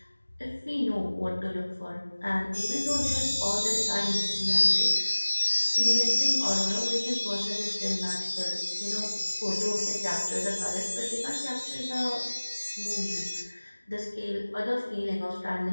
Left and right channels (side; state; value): both; inverted; correlation -1.00